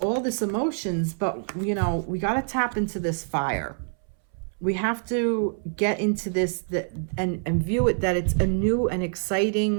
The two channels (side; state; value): left; silent; 61 dB below the other